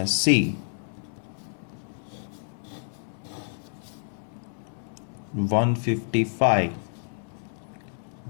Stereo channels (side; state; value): right; silent; digital silence